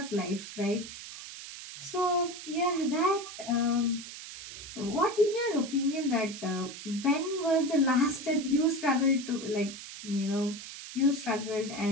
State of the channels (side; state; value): right; noise; hiss, 12 dB below the sound